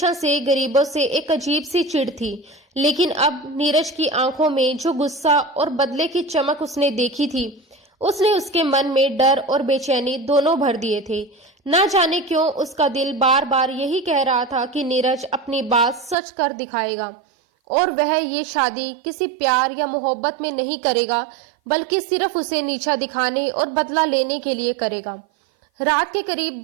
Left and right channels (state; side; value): drops out; left; at 16.2 s